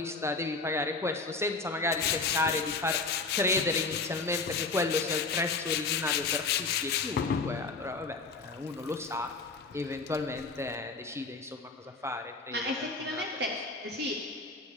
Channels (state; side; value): quieter; right; 3.9 dB